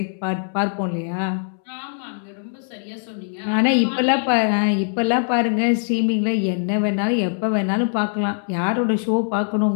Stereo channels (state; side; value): silent; right; 64 dB below the other